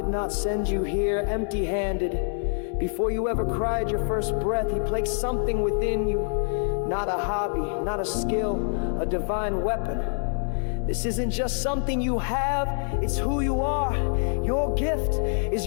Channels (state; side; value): silent; right; 61 dB below the other